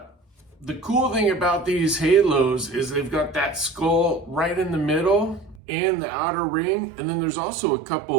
The cool thing about these halos is they've got that skull right in the middle and the outer ring. And then there's also a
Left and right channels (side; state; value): left; drops out; at 5.6 s